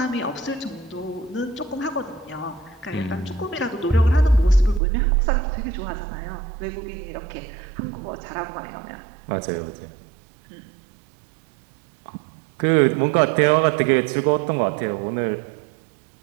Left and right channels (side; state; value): left; drops out; at 4.8 s